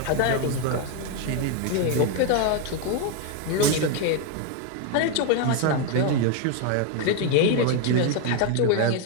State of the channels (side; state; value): both; different; correlation 0.01